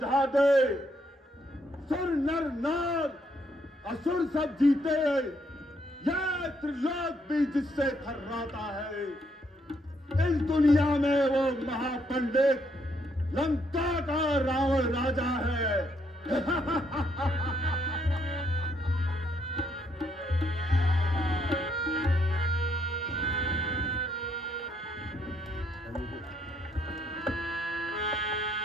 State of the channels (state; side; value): normal; both; correlation 0.73